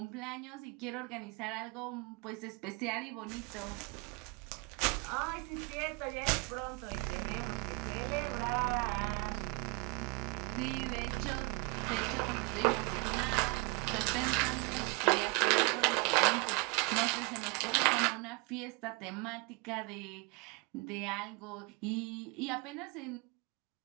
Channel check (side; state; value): left; quieter; 28.7 dB